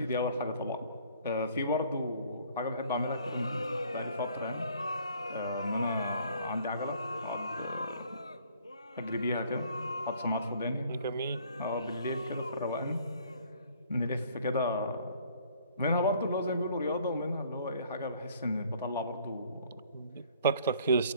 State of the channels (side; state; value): both; inverted; correlation -0.58